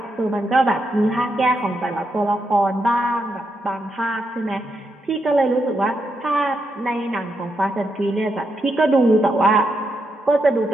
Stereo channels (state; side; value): normal; both; correlation 0.82